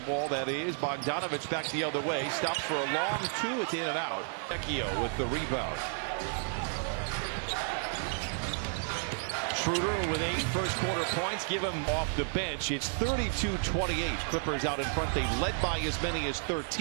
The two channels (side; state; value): left; silent; 56 dB below the other